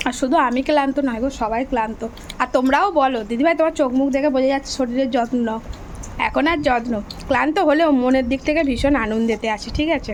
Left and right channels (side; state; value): both; identical; correlation 1.00